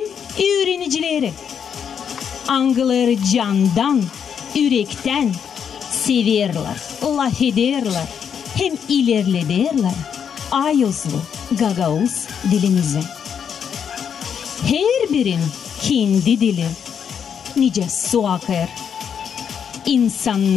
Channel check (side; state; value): right; quieter; 7.7 dB